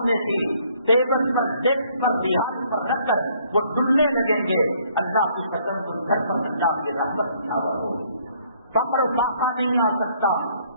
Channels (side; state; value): both; inverted; correlation -0.64